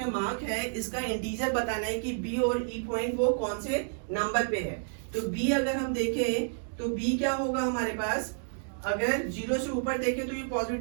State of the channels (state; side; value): silent; left; digital silence